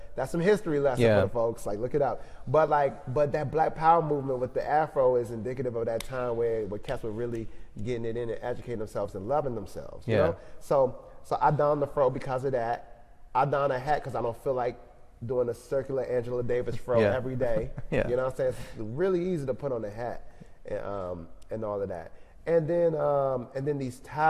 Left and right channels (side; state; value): both; identical; correlation 1.00